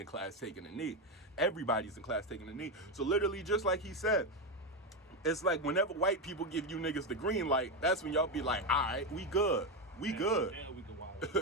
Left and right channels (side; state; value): both; normal; correlation 0.10